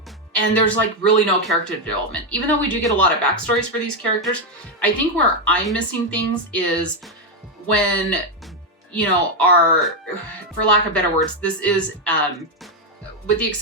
and there's like really no character development. Even though we do get a lot of backstories for these characters, I think where I'm missing things is when, you know, for lack of better words, this is, with the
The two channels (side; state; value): both; normal; correlation 0.04